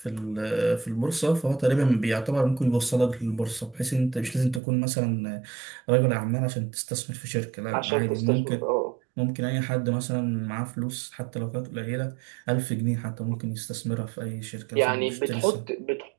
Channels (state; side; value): drops out; left; at 4.6 s